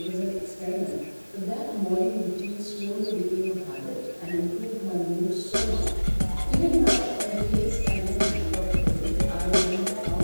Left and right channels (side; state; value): both; inverted; correlation -1.00